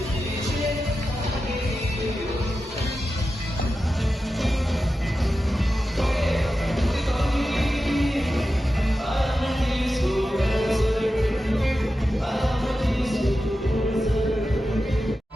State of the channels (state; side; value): normal; both; correlation 0.92